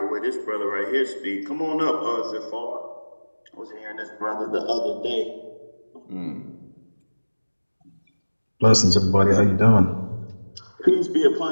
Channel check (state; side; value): inverted; both; correlation -1.00